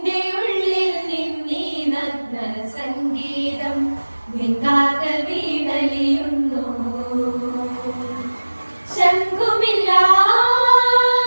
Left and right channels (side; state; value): both; inverted; correlation -1.00